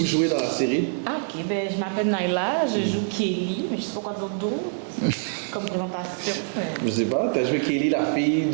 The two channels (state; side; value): silent; left; digital silence